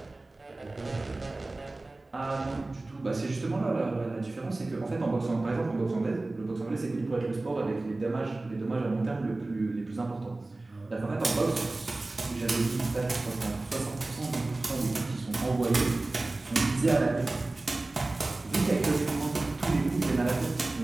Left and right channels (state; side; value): quieter; left; 3.0 dB